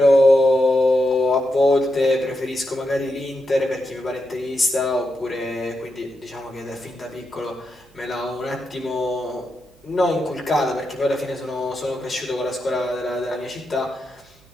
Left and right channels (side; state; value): right; noise; hum, 30 dB below the sound